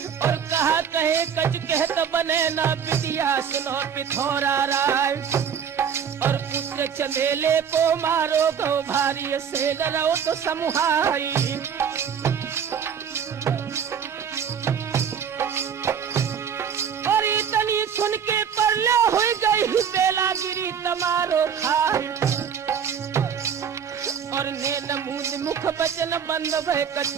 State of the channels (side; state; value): left; quieter; 7.6 dB